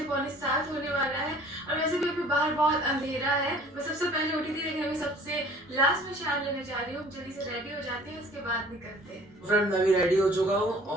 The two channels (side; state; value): both; normal; correlation 0.51